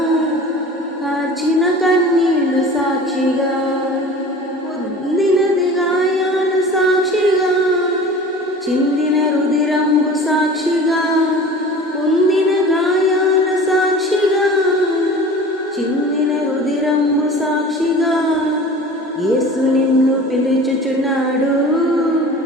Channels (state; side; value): normal; both; correlation 0.40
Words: కార్చిన కన్నీళ్లు సాక్షిగా, పొందినది గాయాలు సాక్షిగా, చిందిన రుధిరంబు సాక్షిగా, పొందిన గాయాల సాక్షిగా, చిందిన రుధిరంబు సాక్షిగా, యేసు నిన్ను పిలుచుచున్నాడు,